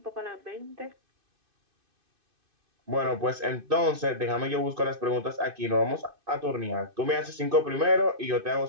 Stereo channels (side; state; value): left; late; 2.6 ms